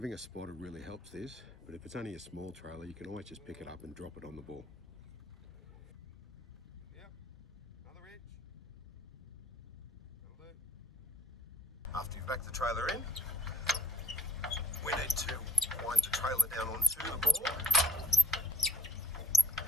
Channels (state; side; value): normal; both; correlation 0.53